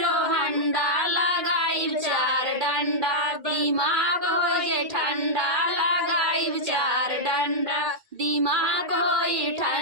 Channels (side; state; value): left; late; 2.3 ms